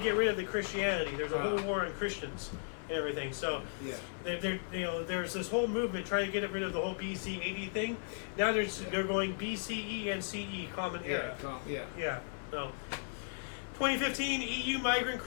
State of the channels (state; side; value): silent; right; digital silence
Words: rid of the Christianity. There's a whole war on Christians and everything. So, there's this whole movement trying to get rid of the whole BC AD thing. Now they're going BCE and CE, Common Era. Yeah. So, 2015 EU migrant